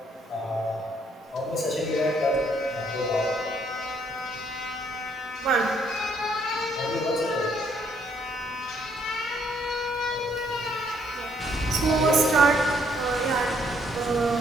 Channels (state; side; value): normal; both; correlation 0.68